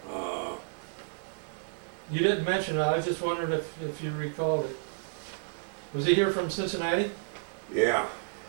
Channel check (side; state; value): left; silent; digital silence